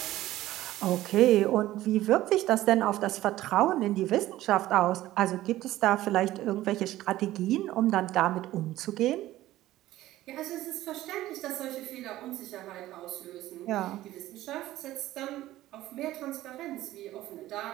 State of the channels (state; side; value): quieter; left; 15.3 dB